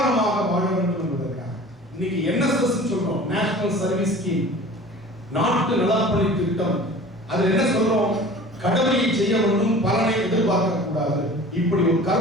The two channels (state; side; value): normal; both; correlation 0.42